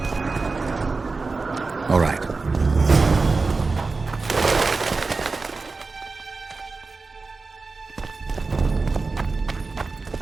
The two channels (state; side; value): quieter; left; 4.0 dB